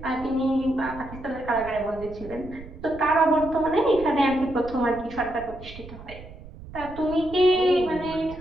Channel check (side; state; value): right; noise; rumble, 15 dB below the sound